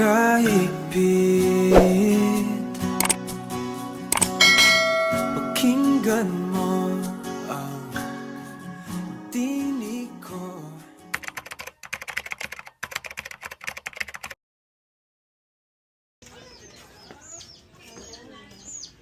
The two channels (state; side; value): identical; both; correlation 1.00